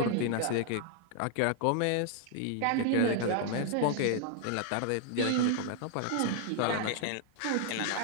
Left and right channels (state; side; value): different; both; correlation 0.00